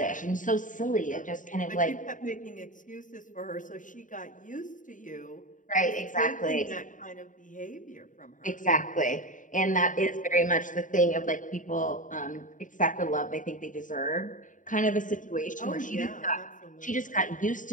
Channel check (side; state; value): right; late; 0.38 ms